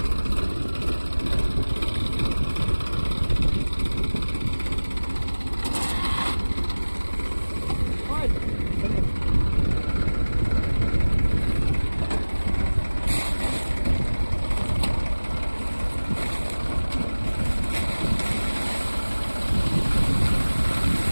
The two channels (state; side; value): inverted; both; correlation -1.00